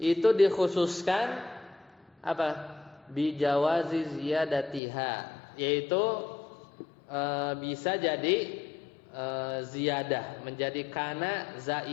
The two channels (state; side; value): drops out; right; at 4.8 s